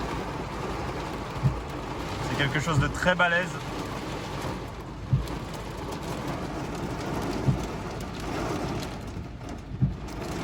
C'est quelque chose de très balèze.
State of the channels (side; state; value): both; identical; correlation 1.00